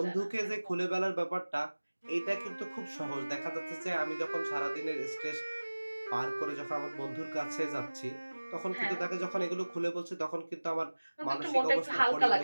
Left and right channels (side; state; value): both; inverted; correlation -1.00